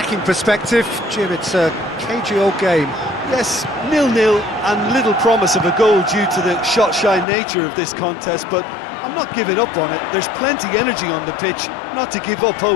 perspective. Jim, it's a cagey old game. Yes, 0-0 and little promise of a goal due to the shot-shy nature of this contest, but I'm not giving up on it. There's plenty energy on the pitch, not to give up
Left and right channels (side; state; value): right; drops out; at 7.2 s